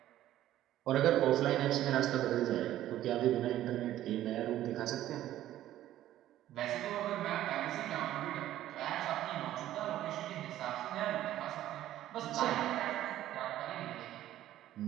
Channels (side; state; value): left; quieter; 13.3 dB